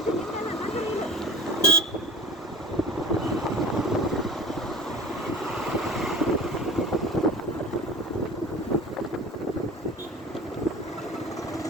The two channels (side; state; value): both; normal; correlation 0.38